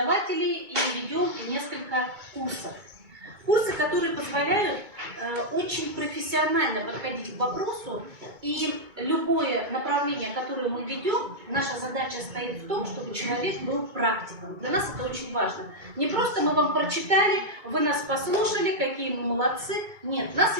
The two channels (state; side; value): late; left; 2.2 ms